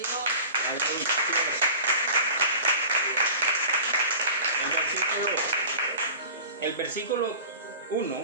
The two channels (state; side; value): inverted; both; correlation -0.39